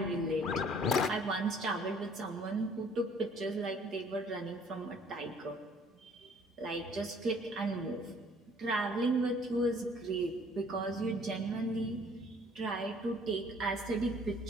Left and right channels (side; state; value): both; normal; correlation 0.57